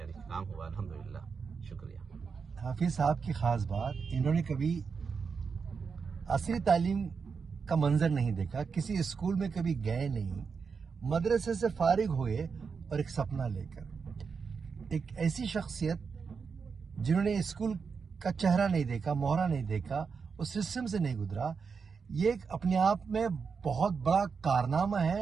काम हुआ, अल्हम्दुलिल्लाह, शुक्रिया। हाफिज साहब की ख़ास बात, इन्होंने कभी असली तालीम का मंजर नहीं देखा, किसी स्कूल में कभी गए नहीं, मदरसे से फारिग हुए और एक सपना लेकर। एक ऐसी शख्सियत जिन्होंने स्कूल का चेहरा नहीं देखा, मोहरा नहीं देखा, उस सिस्टम से नहीं गुजरा, ये अपने आप में बहुत बड़ा कारनामा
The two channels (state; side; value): quieter; left; 5.6 dB